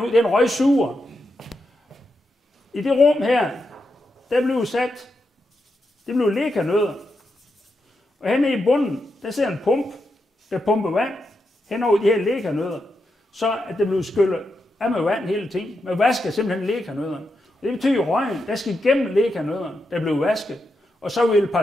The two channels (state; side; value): normal; both; correlation 0.85